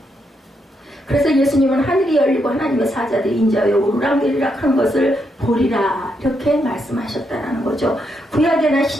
그래서 예수님은 하늘이 열리고 하나님의 사자들이 인자하여 오르락내리락 하는 것을 보리라 이렇게 말씀하셨다라는 거죠. 구약에나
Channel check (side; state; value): both; normal; correlation 0.80